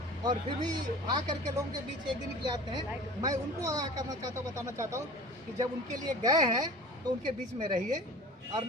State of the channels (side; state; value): both; normal; correlation 0.40